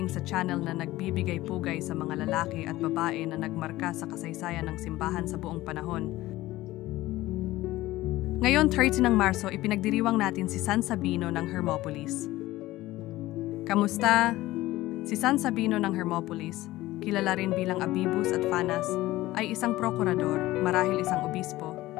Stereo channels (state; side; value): quieter; right; 17.2 dB